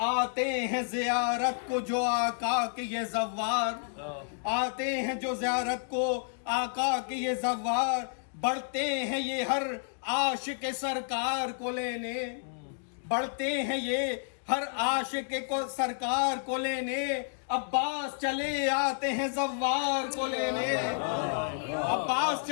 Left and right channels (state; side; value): silent; right; digital silence